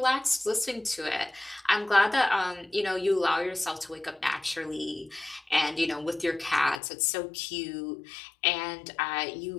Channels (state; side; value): drops out; right; at 6.8 s